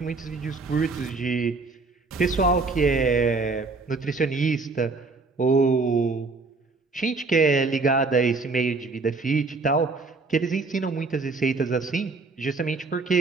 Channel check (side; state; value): left; quieter; 3.9 dB